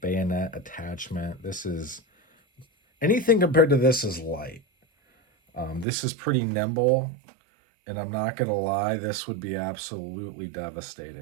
bayonet attachment. This is, anything compared to this is light. This is pretty nimble, and I'm not going to lie, this would be absolutely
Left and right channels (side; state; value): left; drops out; at 5.9 s